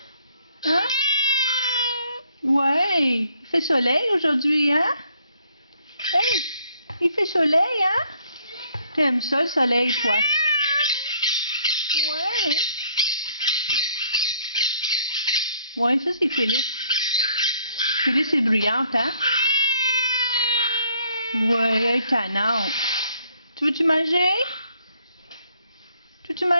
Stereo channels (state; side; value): inverted; both; correlation -0.65